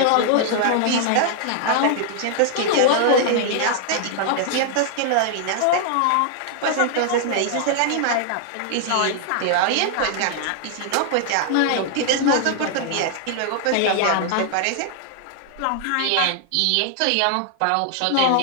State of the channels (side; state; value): both; different; correlation -0.01